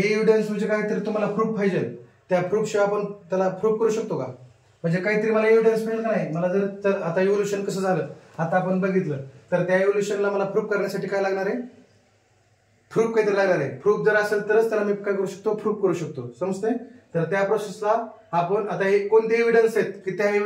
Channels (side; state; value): both; identical; correlation 1.00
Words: एव्हिडन्स म्हणजे काहीतरी तुम्हाला प्रूफ पाहिजे, त्या प्रूफ शिवाय आपण त्याला प्रूफ करू शकतो का? म्हणजे काहीतरी मला एव्हिडन्स मिळेल का नाही. मला जर आता इव्होल्युशन कसं झालं आता आपण बघितलं, तर त्या इव्होल्युशनला मला प्रूफ करण्यासाठी काय लागणार आहे? प्रूफ काहीतरी लागणार आहे. प्रूफ जर असेल तरच त्याला मी काय करू शकतो? प्रूफ करू शकतो. समजतंय? तर त्या प्रोसेसला आपण आता हे कोणते एव्हिडन्स आहेत की त्या